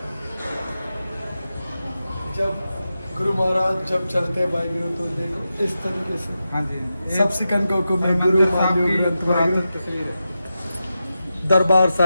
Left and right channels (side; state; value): both; inverted; correlation -0.90